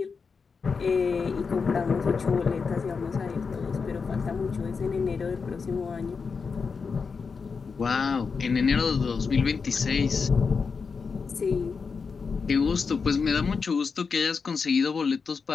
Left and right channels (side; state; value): right; quieter; 5.2 dB